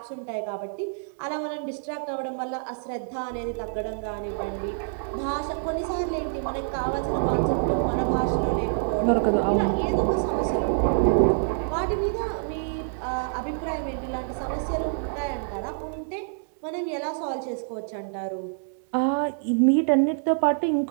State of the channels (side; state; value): left; silent; digital silence